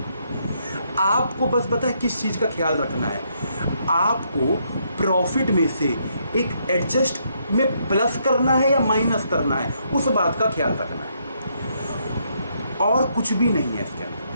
आपको बस पता है किस चीज का ख्याल रखना है, आपको प्रॉफिट में से एक एडजस्ट में प्लस करना है या माइनस करना है, उस बात का ख्याल रखना है, और कुछ भी नहीं है इसके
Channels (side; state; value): both; inverted; correlation -0.74